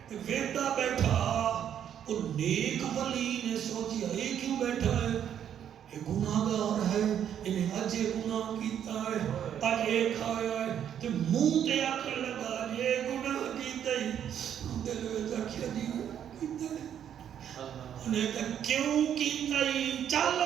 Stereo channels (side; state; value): left; quieter; 9.4 dB